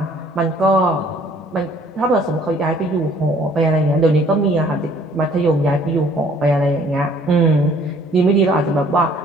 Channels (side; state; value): both; normal; correlation 0.58